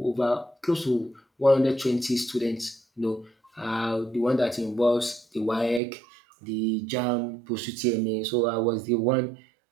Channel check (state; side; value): drops out; left; at 5.8 s